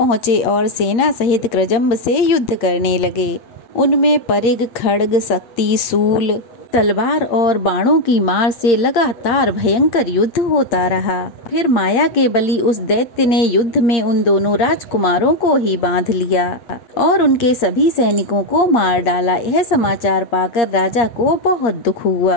और सेना सहित कृजंब से युद्ध करने लगे। उनमें परिग, खड्ग, शक्ति, शूल, तलवार और बाणों की मार से लगातार भयंकर युद्ध होता रहा। फिर माया के बली उस दैत्य ने युद्ध में उन दोनों राजकुमारों को ही बांध लिया और उनके सभी सैनिकों को मार डाला। यह समाचार पाकर राजा को बहुत दुख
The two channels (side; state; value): right; late; 8.7 ms